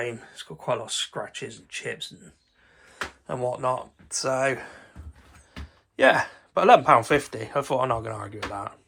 it's got quite a lot of scratches and chips and whatnot. So, yeah, but £11.50, I thought I'm not going to argue with that.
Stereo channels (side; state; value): both; identical; correlation 1.00